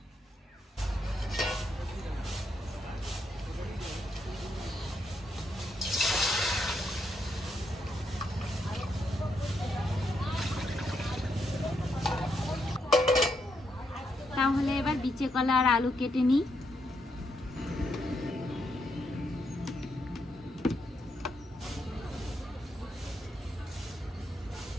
তাহলে এবার বিচে কলা আর আলু কেটে নিই।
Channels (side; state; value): both; normal; correlation 0.79